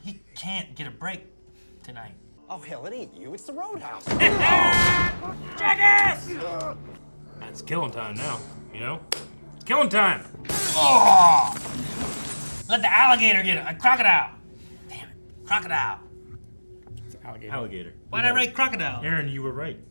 He can't get a break tonight. Oh, hell, it ain't you. It's the roadhouse. Jackass! It's killing time now. You know, killing time. Oh! Let the alligator get it. A crocodile. Damn it. Crocodile. It's alligator. Alligator. Why'd I write crocodile? Aaron, you were right.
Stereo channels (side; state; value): both; inverted; correlation -1.00